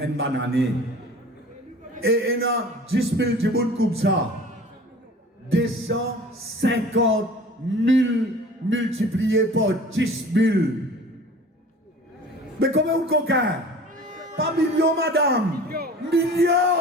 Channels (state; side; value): normal; both; correlation 0.44